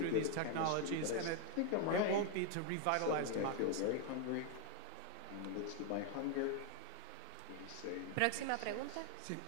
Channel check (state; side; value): different; both; correlation 0.01